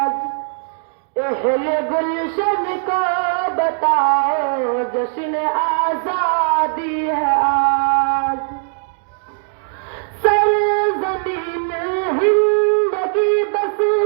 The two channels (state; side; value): silent; left; digital silence